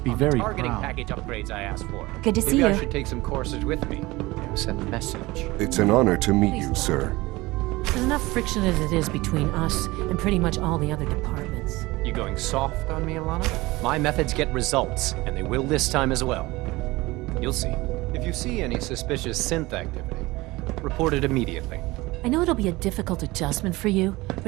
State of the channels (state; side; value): quieter; left; 20.8 dB